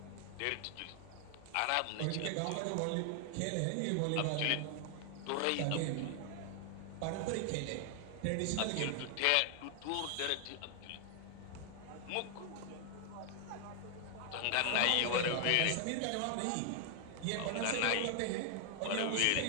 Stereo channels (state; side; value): different; both; correlation 0.00